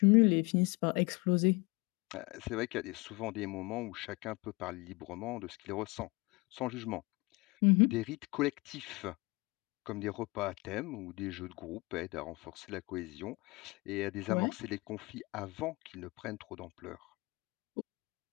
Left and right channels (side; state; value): right; quieter; 25.5 dB